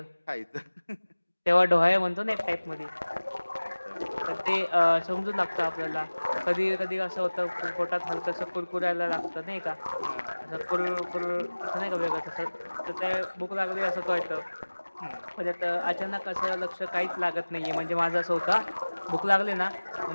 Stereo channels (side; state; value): both; inverted; correlation -1.00